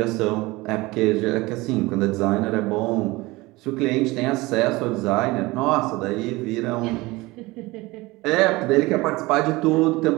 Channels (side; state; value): left; quieter; 21.4 dB